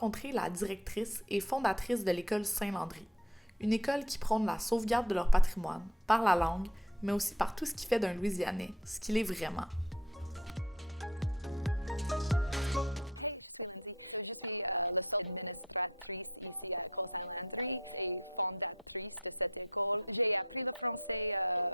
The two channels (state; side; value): normal; both; correlation 0.51